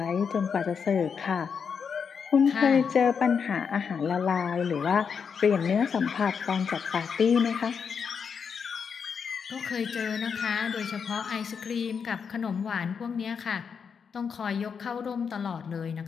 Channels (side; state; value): right; quieter; 6.4 dB